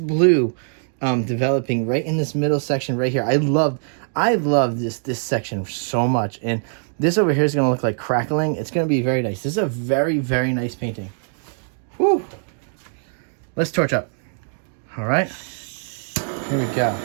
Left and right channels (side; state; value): left; silent; 63 dB below the other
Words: developing right in this middle section right here. I love this section so much, and this over here is going to look like crackling. It's going to be very nice. This is a very, very nice painting. Woo! Let's torch up. All right, here we go.